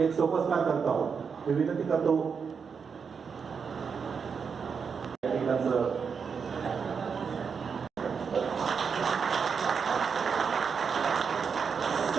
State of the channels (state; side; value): quieter; left; 6.1 dB